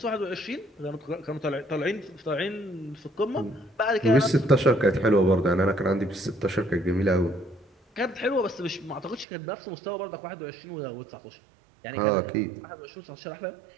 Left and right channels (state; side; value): drops out; left; at 9.2 s